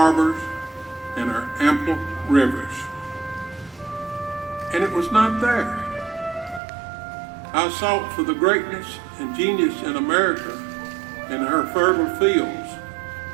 and her ample rivers, and it was not there. I sought for the greatness and genius in America in her fertile fields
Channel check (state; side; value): drops out; left; at 6.6 s